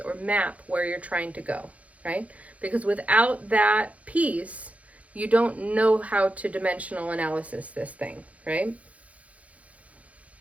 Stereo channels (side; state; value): left; late; 0.067 ms